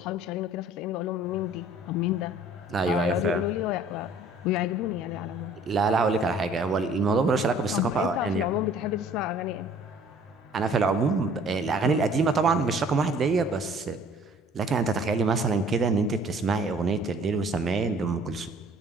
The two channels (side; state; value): both; normal; correlation 0.54